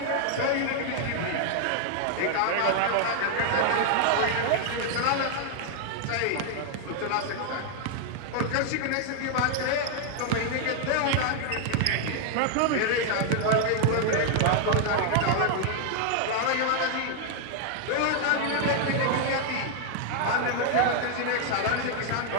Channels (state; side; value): different; both; correlation 0.00